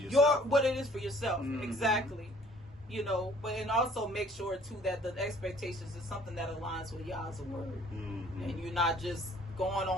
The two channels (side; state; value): both; normal; correlation 0.56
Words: what it is for yourself. Exactly. But and also make sure too that the expectations is something that aligns with Yah's word, and you're not just going